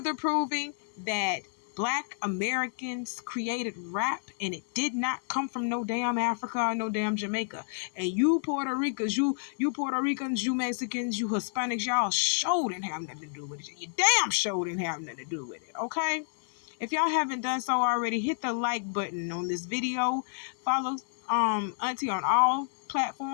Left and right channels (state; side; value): silent; right; 58 dB below the other